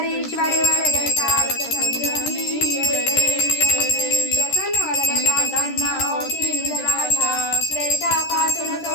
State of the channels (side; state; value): right; late; 13 ms